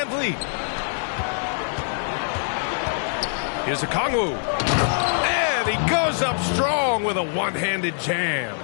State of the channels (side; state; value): right; silent; digital silence